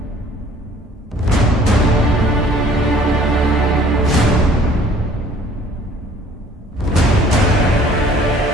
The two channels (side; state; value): both; normal; correlation 0.54